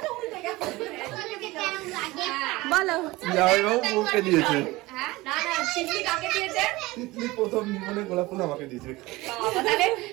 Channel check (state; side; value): quieter; left; 20.4 dB